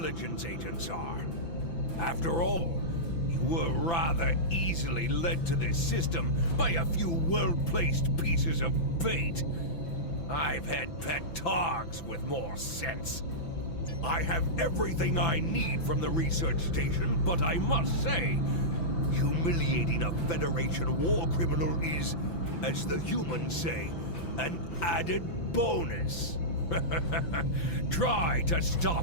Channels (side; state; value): right; late; 5.9 ms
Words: agents are. After all, you were rather easily led to this system by a few well-placed pieces of bait. I've had pet dogs with more sense. I have everything I need from the research station, but I must say, humiliating a Federation war criminal is, as the humans say, an added bonus. Try to